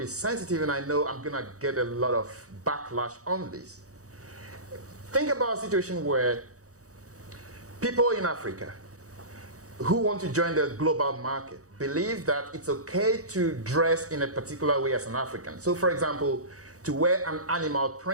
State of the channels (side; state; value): left; late; 0.66 ms